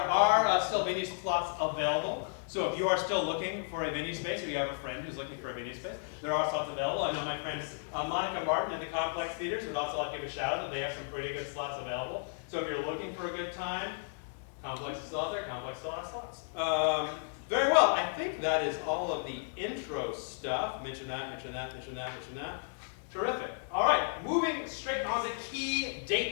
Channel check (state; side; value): silent; right; digital silence